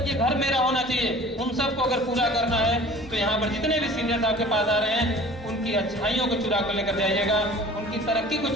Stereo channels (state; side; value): normal; both; correlation 0.45